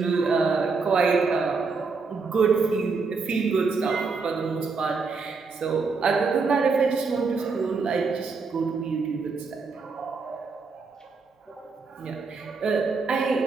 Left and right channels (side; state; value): left; quieter; 4.6 dB